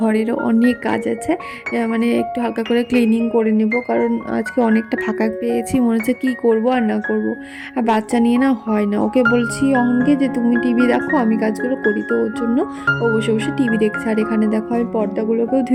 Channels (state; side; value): identical; both; correlation 1.00